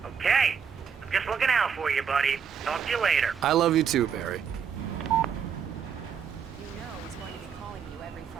Okay. I'm just looking out for you, buddy. Talk to you later. I love you too, Barry. You know he's going to be calling you every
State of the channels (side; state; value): left; quieter; 7.1 dB